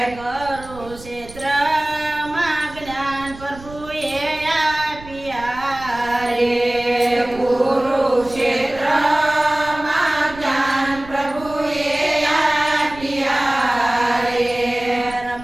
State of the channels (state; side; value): noise; right; rumble, 17 dB below the sound